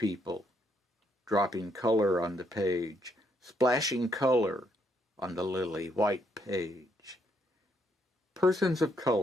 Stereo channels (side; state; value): both; normal; correlation 0.74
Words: Dropping color on the page. Splashing color on the lily white page. Persons of